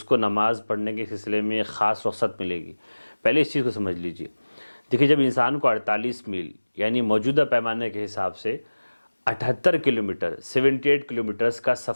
کو نماز پڑھنے کے سلسلے میں ایک خاص رخصت ملے گی؟ پہلے اس چیز کو سمجھ لیجئے۔ دیکھیے، جب انسان کو 48 میل یعنی موجودہ پیمانے کے حساب سے 78 کلومیٹر 78 کلومیٹرز کا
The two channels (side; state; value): both; inverted; correlation -1.00